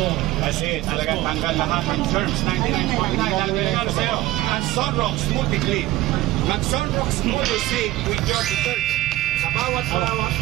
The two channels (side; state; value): left; quieter; 16.6 dB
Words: Kasi talagang tanggal lahat ng germs, 99.9. Dahil pinagano sa'yo, ang Sunrox Multi-Clean. Mag-Sunrox Multi-Save with your detergent. Sa bawat